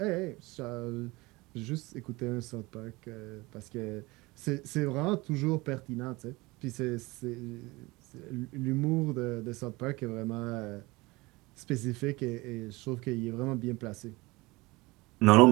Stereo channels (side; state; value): left; quieter; 22.6 dB